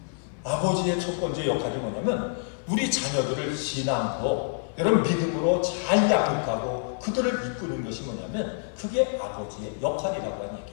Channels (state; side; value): silent; right; digital silence